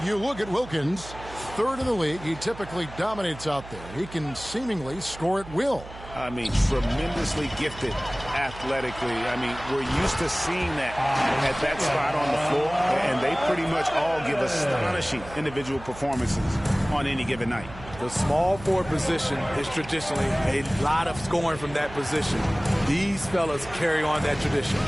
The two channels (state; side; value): noise; right; hum, 15 dB below the sound